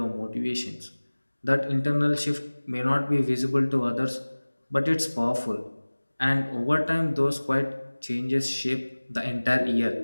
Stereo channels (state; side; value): inverted; both; correlation -1.00